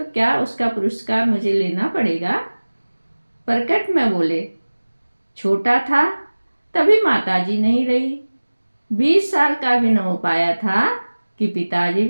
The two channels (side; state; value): both; inverted; correlation -1.00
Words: क्या उसका पुरस्कार मुझे लेना पड़ेगा? प्रकट में बोले, छोटा था तभी माताजी नहीं रही, 20 साल का भी न हो पाया था कि पिताजी